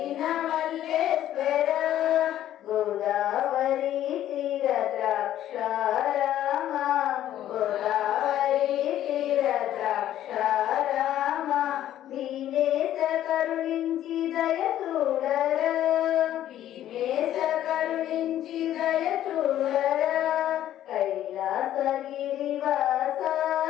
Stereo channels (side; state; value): right; quieter; 12.1 dB